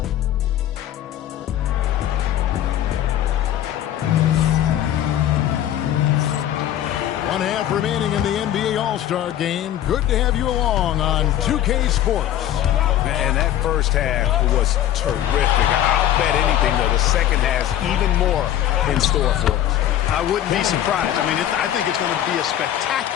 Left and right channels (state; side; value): quieter; right; 11.7 dB